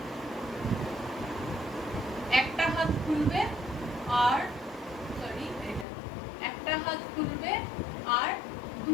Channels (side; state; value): right; drops out; at 5.9 s